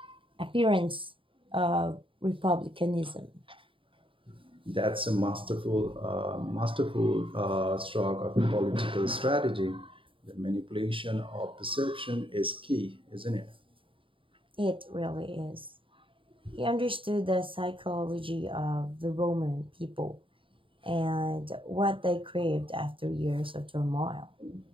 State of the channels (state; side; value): late; left; 0.25 ms